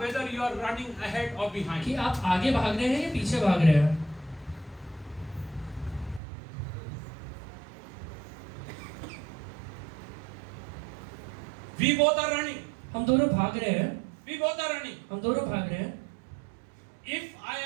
whether you are running ahead or behind? कि आप आगे भाग रहे हैं या पीछे भाग रहे हैं? We both are running. हम दोनों भाग रहे हैं, We both are running. हम दोनों भाग रहे हैं। If I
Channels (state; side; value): drops out; left; at 6.2 s